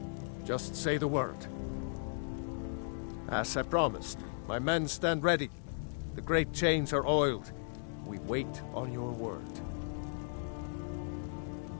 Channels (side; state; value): right; silent; digital silence